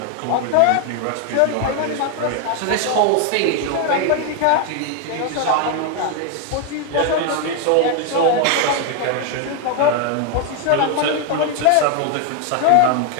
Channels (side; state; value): both; different; correlation 0.01